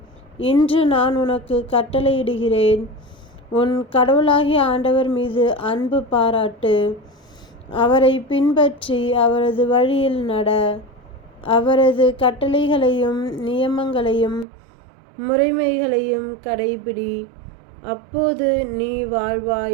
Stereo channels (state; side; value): drops out; left; at 14.5 s